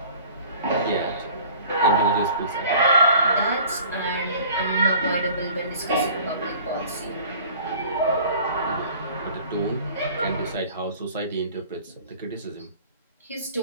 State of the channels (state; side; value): inverted; both; correlation -0.47